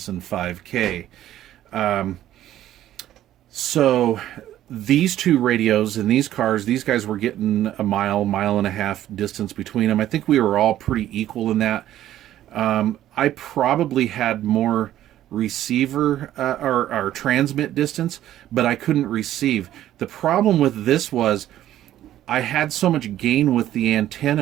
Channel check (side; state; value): left; quieter; 12.7 dB